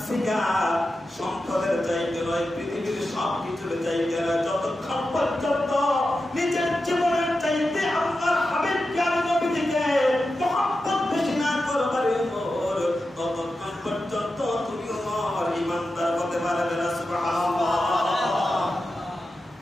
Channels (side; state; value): both; normal; correlation 0.91